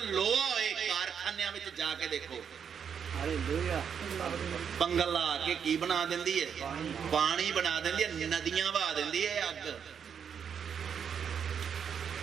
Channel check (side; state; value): left; quieter; 7.5 dB